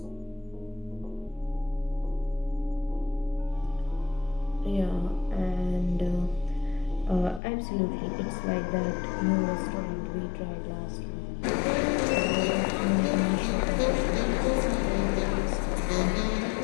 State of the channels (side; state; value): right; drops out; at 7.4 s